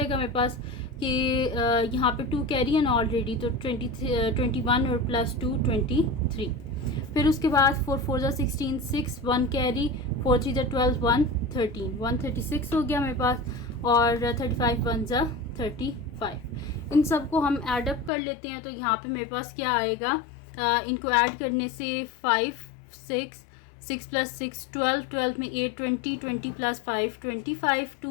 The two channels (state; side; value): drops out; right; at 18.1 s